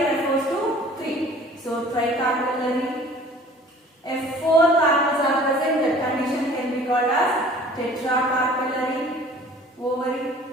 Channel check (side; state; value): both; normal; correlation 0.49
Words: refers to three. So, tricarpellary. If four carpels are present, the condition can be called as tetracarpellary ovary.